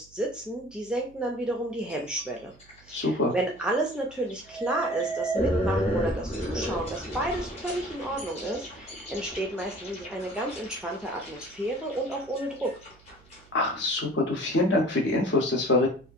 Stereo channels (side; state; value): right; noise; hum, 26 dB below the sound